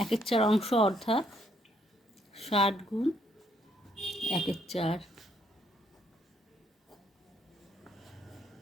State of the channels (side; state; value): both; normal; correlation 0.71